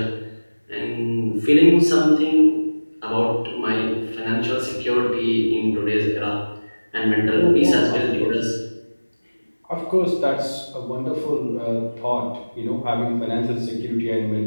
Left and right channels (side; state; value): both; inverted; correlation -1.00